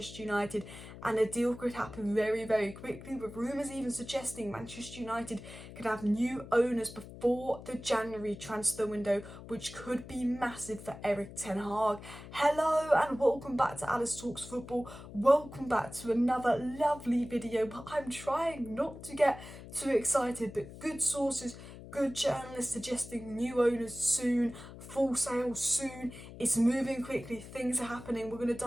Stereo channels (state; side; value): noise; left; hum, 14 dB below the sound